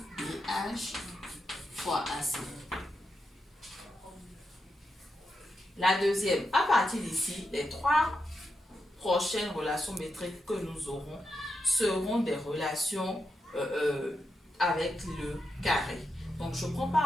BH fois AC. La deuxième, à partir d'ici, les trois prochaines relations métriques que nous aurons seront des relations avec le carré. Donc, je prends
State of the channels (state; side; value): normal; both; correlation 0.86